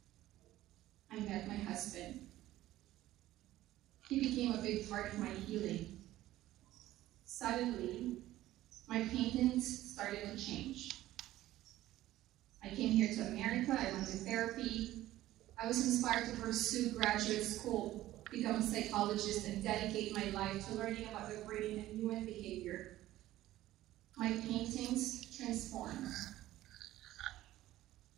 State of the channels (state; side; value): quieter; left; 15.0 dB